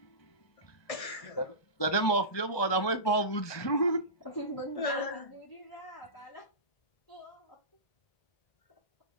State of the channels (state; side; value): late; right; 1.2 ms